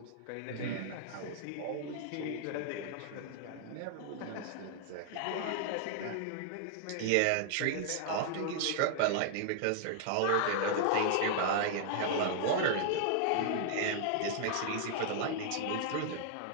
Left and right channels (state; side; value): different; both; correlation 0.00